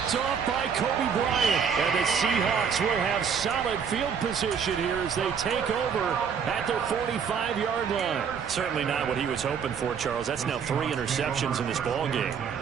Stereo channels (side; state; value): left; quieter; 6.8 dB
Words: off by Kobe Bryant. And the Seahawks will have solid field position here as they take over at their 45-yard line. Certainly not what he was hoping for, Charles. That's now 3 interceptions in this ball game.